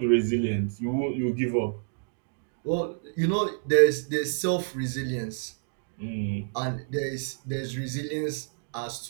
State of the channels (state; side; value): silent; left; digital silence